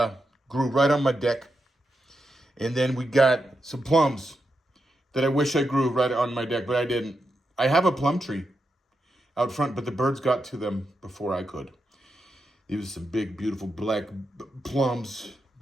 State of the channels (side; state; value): both; normal; correlation 0.86